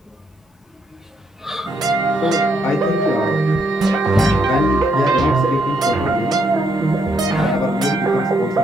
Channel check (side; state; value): both; normal; correlation 0.75